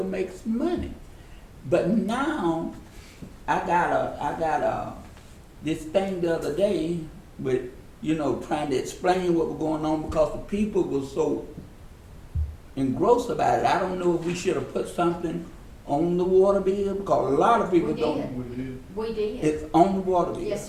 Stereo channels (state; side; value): identical; both; correlation 1.00